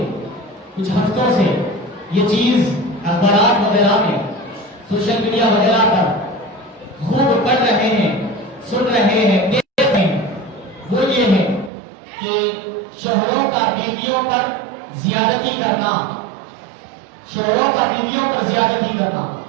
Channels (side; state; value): left; drops out; at 11.7 s